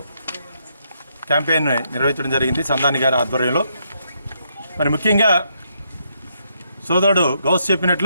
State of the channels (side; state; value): both; inverted; correlation -0.76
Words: క్యాంపెయిన్ నిర్వహించడం జరిగింది సందాని గారి ఆధ్వర్యంలో. మరి ముఖ్యంగా సోదరుడు గౌస్